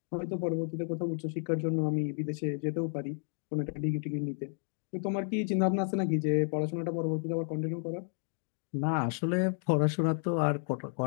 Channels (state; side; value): silent; right; 56 dB below the other